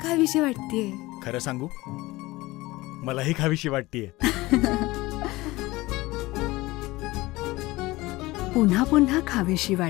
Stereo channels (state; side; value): quieter; right; 20.1 dB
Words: खावीशी वाटतेय. खरं सांगू, मलाही खावीशी वाटतीये. पुन्हा पुन्हा खावीशी